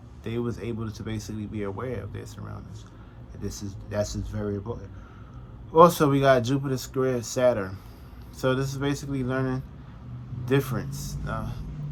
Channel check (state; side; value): identical; both; correlation 1.00